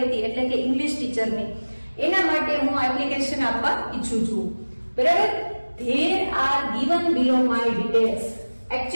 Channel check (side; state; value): both; inverted; correlation -1.00